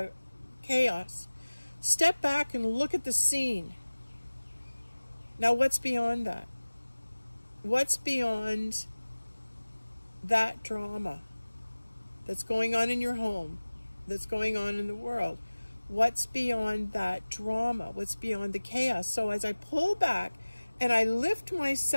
chaos, step back and look at the scene. Now, what's beyond that? What's beyond that drama that's going on in your home, that's going on in the world? What's beyond that drama? What's beyond the chaos? So as I pull back and I lift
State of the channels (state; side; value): inverted; both; correlation -1.00